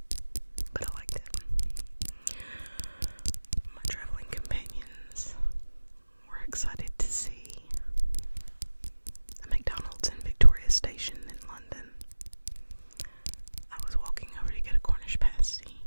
but I liked it. My traveling companions were excited to see a McDonald's in Victoria Station in London. I was walking over to get a Cornish pasty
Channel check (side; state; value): both; inverted; correlation -1.00